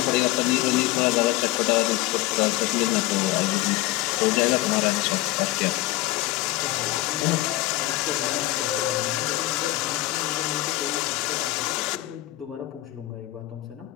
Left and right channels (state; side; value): quieter; right; 17.7 dB